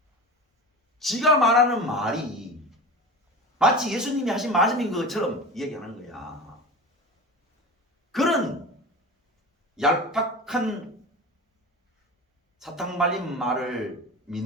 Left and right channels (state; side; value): normal; both; correlation 0.31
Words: 지가 말하는 말이 마치 예수님이 하신 말씀인 것처럼 얘기하는 거야. 그런 얄팍한 사탕 발린 말을